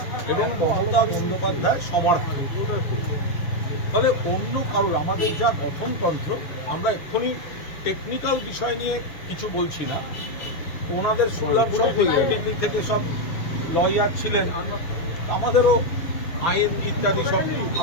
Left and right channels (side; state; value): right; late; 6.5 ms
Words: এবং মমতা বন্দ্যোপাধ্যায় সমর্থক, ফলে অন্য কারোর আমাদের যা গঠনতন্ত্র, আমরা এক্ষুনি টেকনিক্যাল বিষয় নিয়ে কিছু বলছি না। ওনাদের শুনলাম সব দিল্লি থেকে সব লয়ার ছিলেন, আমাদেরও আইন ইত্যাদি সব